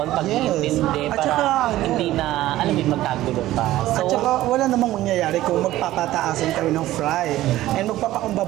pag-iintindi para hindi na, alam mo, magkagulo pa. So, at saka wala namang mangyayari kung magpapataasan kami ng fry. And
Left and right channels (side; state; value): left; quieter; 15.3 dB